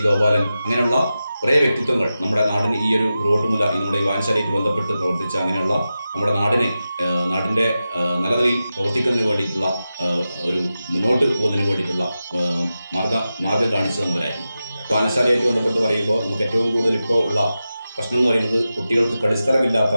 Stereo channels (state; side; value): inverted; both; correlation -0.92